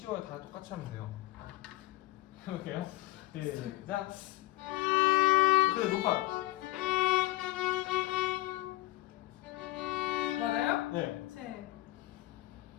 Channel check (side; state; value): right; quieter; 16.9 dB